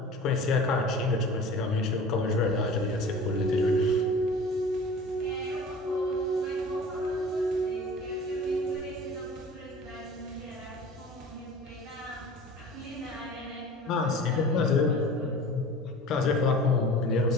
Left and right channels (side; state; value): both; normal; correlation 0.40